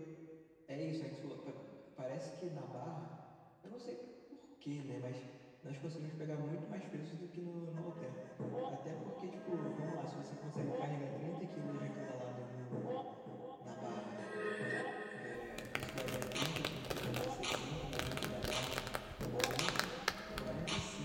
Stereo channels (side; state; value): both; identical; correlation 1.00